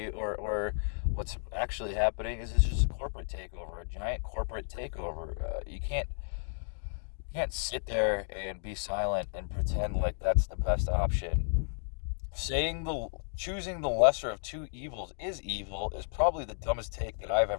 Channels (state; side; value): silent; right; digital silence